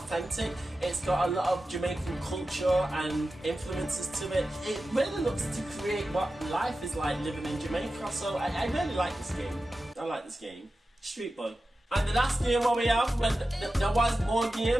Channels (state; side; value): normal; both; correlation 0.93